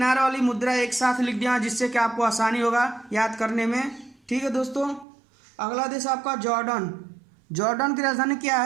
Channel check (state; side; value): drops out; left; at 5.1 s